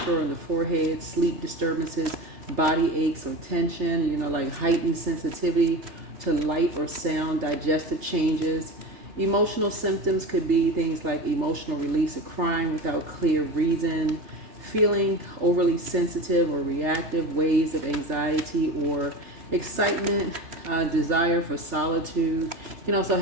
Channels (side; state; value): left; late; 3.3 ms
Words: on the forehead, sleep disturbances, body aches or tension, like heightened sensitivity to light or sound, digestive changes. Emotional symptoms could be things like emotional release of crying without clear reason, feeling overly sensitive or reactive, waves of anxiety or excitement, desire for solitude. You can also